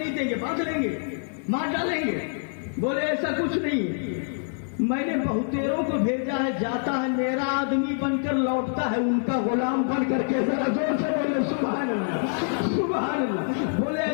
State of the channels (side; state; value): right; silent; digital silence